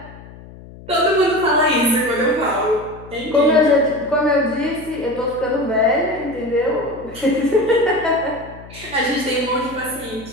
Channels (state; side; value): noise; left; hum, 18 dB below the sound